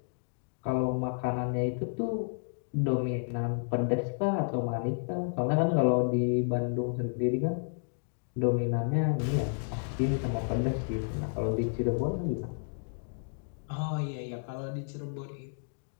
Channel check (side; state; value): right; silent; digital silence